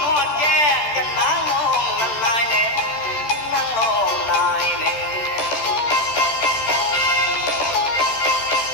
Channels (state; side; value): late; right; 13 ms